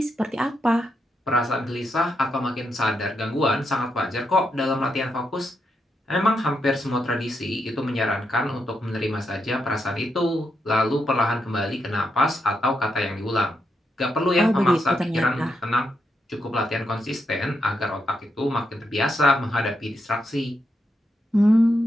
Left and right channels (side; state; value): both; normal; correlation 0.82